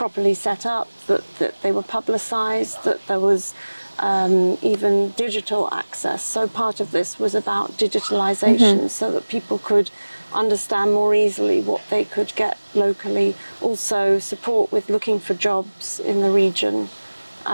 set up, that they were publicized, that there was even digital access. So part of this was about digitalization, so that people could understand more easily what they could get locally. Also support with looking for jobs in the region.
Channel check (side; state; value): both; inverted; correlation -1.00